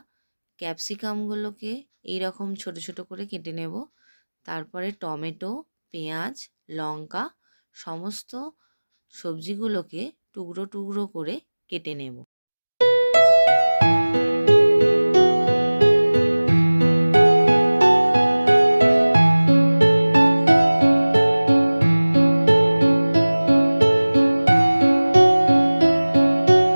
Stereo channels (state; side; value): inverted; both; correlation -1.00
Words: ক্যাপসিকামগুলোকে এইরকম ছোট ছোট করে কেটে নেব। তারপরে টমেটো, পেঁয়াজ, লঙ্কা সমস্ত সবজিগুলোকে টুকরো টুকরো করে কেটে নেব।